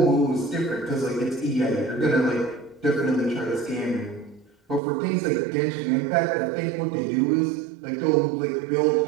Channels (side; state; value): left; drops out; at 4.8 s